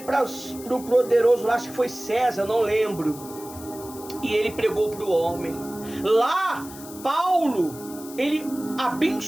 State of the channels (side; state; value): left; noise; hiss, 16 dB below the sound